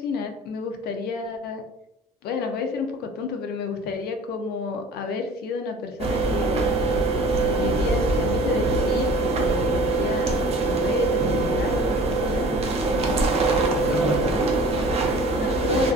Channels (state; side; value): normal; both; correlation 0.45